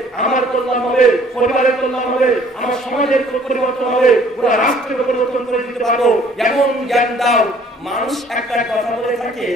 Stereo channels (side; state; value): both; normal; correlation 0.57